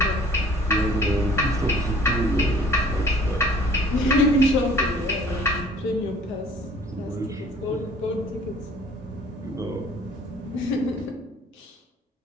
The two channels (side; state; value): both; normal; correlation 0.53